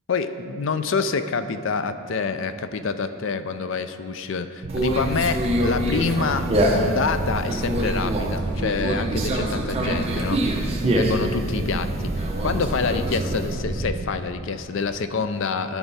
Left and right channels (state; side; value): normal; both; correlation 0.29